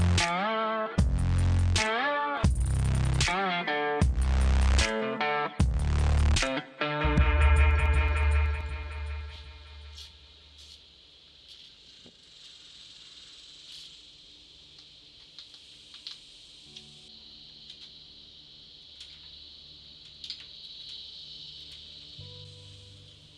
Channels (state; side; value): identical; both; correlation 1.00